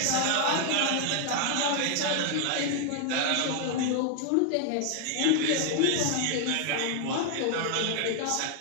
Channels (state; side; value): different; both; correlation 0.00